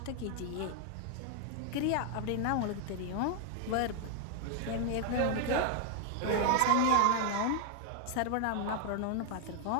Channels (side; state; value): both; different; correlation 0.00